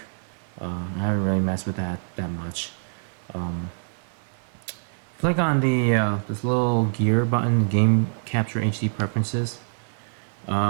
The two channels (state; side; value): silent; left; digital silence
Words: I haven't really messed with that much. Click on the this little gear button, Game Capture HD Preferences.